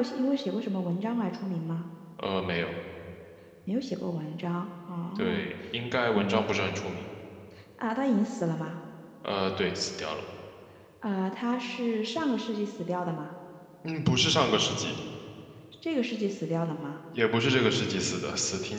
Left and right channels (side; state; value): both; identical; correlation 1.00